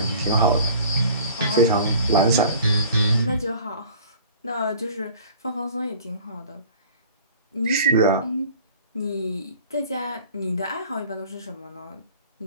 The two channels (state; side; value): inverted; both; correlation -0.47